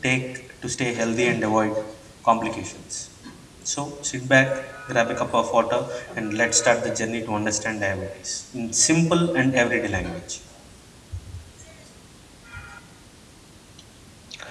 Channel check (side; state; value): both; identical; correlation 1.00